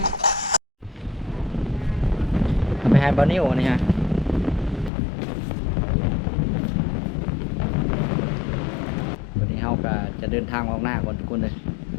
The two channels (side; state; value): right; drops out; at 4.9 s